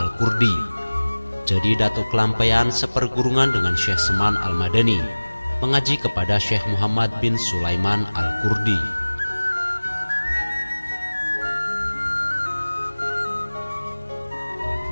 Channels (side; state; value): both; inverted; correlation -1.00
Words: Jadi Datuk Kelampaian sepergurungan dengan Syekh Saman Al-Madani, mengaji kepada Syekh Muhammad bin Sulaiman Al-Qurdi.